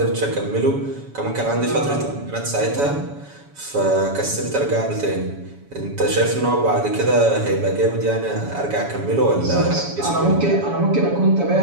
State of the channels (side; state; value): left; late; 7.1 ms